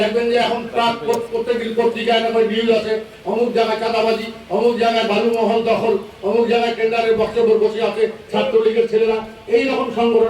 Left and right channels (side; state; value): both; identical; correlation 1.00